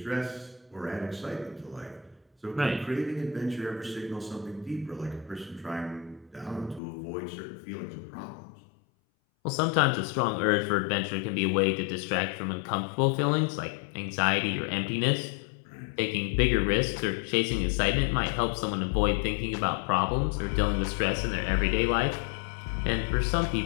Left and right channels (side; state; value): right; drops out; at 6.8 s